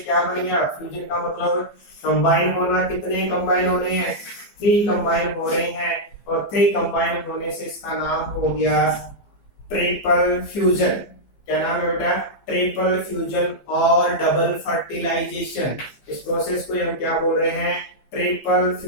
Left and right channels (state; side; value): late; right; 15 ms